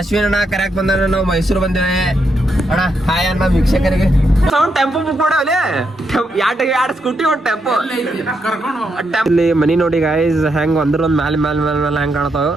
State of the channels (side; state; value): both; normal; correlation 0.81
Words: ಅಣ್ಣ ಕರ್ಯಾಕ್ ಬಂದ ನಾವು ಮೈಸೂರು ಬಂದೇವೆ. ಅಣ್ಣ ಹಾಯ್ ಅಣ್ಣ ವೀಕ್ಷಕರಿಗೆ. ಟೆಂಪೋ ಬುಕ್ ಮಾಡವಲೆ ಎರಡು ಸ್ಕೂಟಿ ಒಂದು ಟೆಂಪೋ. ಇಲ್ಲಿ ಮನಿ ನೋಡಿ ಗಾಯ್ಸ್ ಹೆಂಗ್ ಒಂದ್ ಮ್ಯಾಲ ಹೆಂಗ್ ಕಾಣತಾವ.